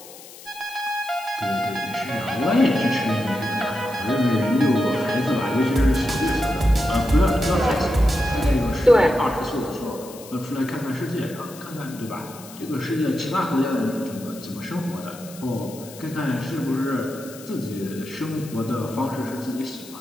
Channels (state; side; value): noise; left; hiss, 18 dB below the sound